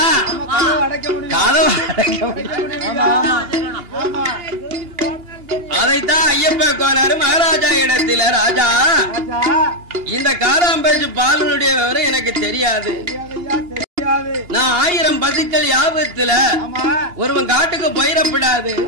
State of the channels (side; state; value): left; late; 2.9 ms